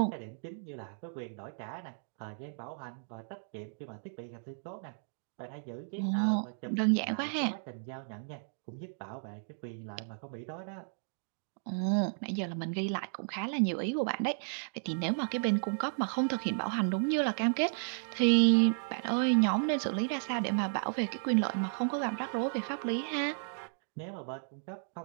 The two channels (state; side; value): silent; left; digital silence